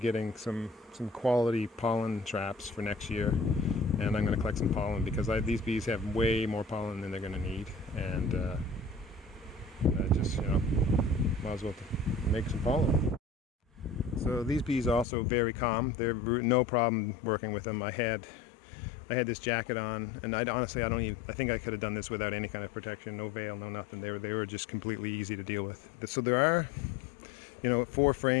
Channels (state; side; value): drops out; right; at 15.1 s